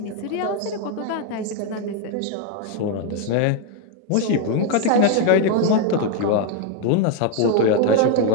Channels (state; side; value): different; both; correlation 0.01